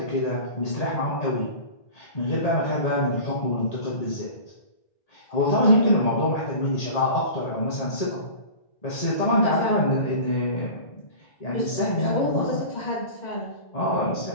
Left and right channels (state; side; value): late; right; 1.8 ms